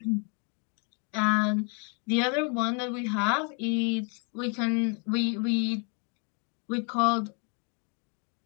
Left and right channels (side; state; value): right; quieter; 37.1 dB